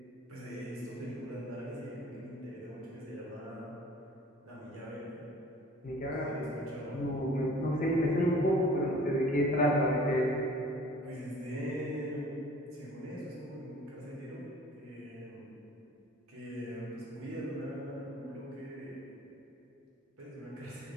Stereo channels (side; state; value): both; normal; correlation 0.49